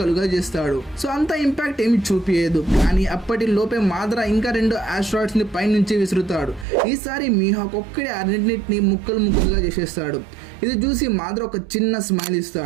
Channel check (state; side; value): drops out; left; at 6.7 s